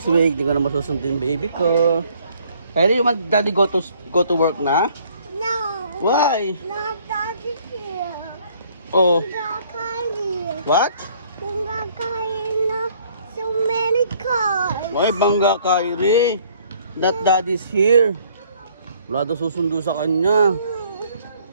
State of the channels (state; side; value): inverted; both; correlation -0.61